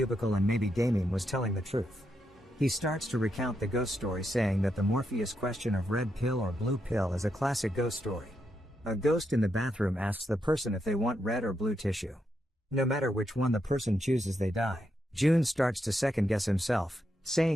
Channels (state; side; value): normal; both; correlation 0.82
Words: and maybe Damien was telling the truth. He starts to recount the ghost story, saying that the Morpheus question of red pill or blue pill is a classic ghost story. A ghost in the bathroom asks the person if they want red or blue tissue. No matter which one the person chooses, they die. June starts to second guess himself,